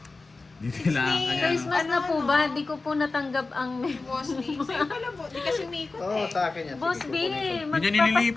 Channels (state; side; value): quieter; right; 3.7 dB